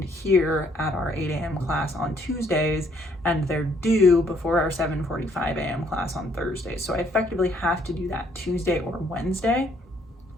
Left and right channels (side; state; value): both; normal; correlation 0.67